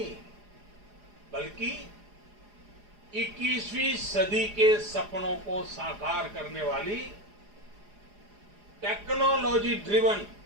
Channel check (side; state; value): left; late; 4.9 ms